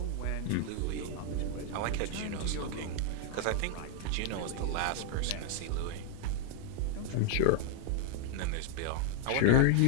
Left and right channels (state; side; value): different; both; correlation 0.00